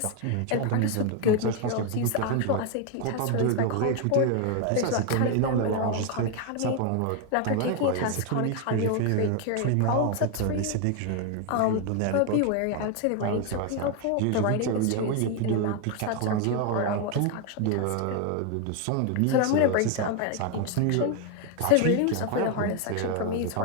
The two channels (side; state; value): both; different; correlation 0.01